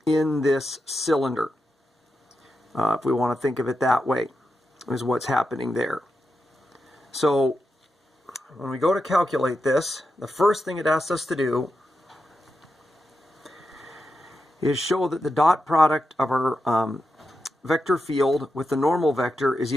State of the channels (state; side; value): normal; both; correlation 0.88